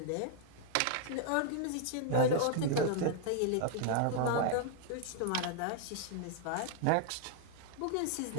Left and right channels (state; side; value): different; both; correlation 0.00